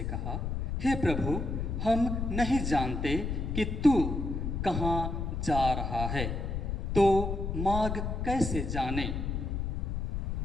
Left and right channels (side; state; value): left; noise; rumble, 2 dB below the sound